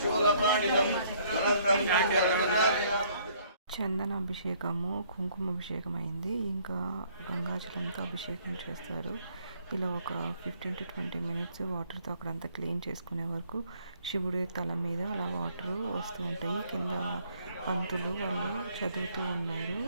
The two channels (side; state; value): both; inverted; correlation -0.63